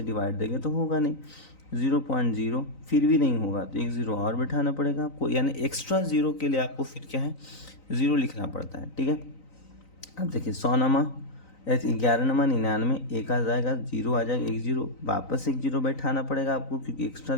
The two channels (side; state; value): right; late; 3.9 ms